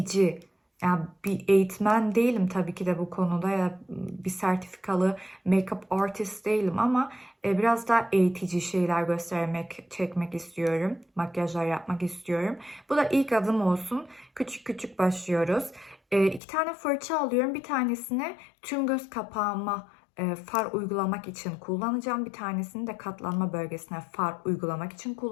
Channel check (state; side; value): drops out; right; at 16.4 s